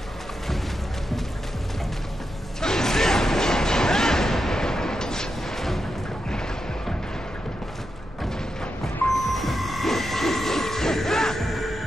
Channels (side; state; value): both; normal; correlation 0.87